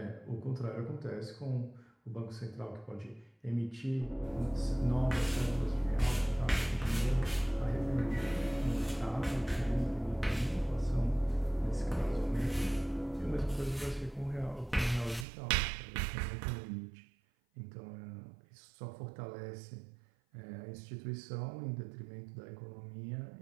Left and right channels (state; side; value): drops out; left; at 15.2 s